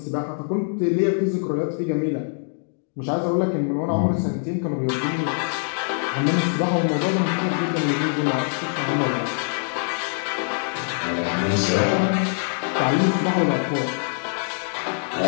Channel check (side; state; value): right; silent; digital silence